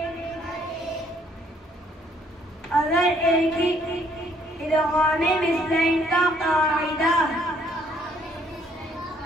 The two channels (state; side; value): normal; both; correlation 0.65